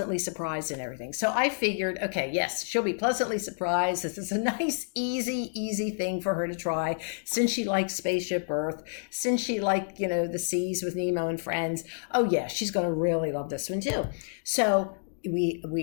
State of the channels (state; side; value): silent; right; digital silence